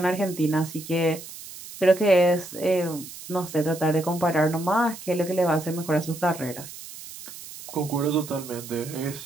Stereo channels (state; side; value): noise; right; hiss, 14 dB below the sound